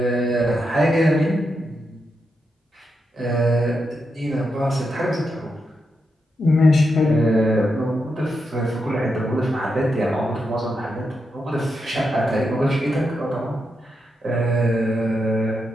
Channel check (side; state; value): both; normal; correlation 0.85